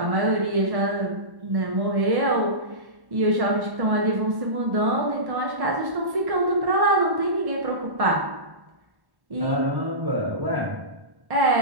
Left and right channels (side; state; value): left; late; 1.1 ms